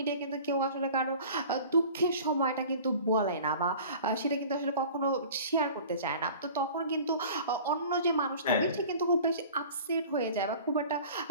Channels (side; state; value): both; inverted; correlation -0.43